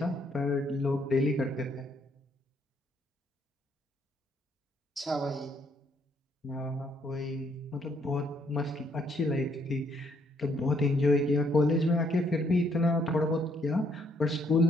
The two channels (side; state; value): both; normal; correlation 0.70